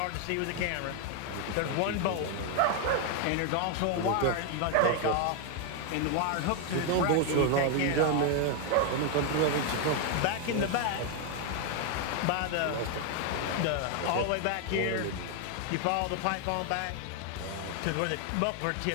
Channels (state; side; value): different; both; correlation 0.01